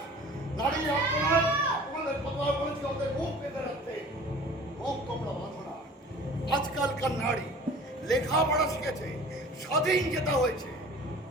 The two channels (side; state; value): both; normal; correlation 0.45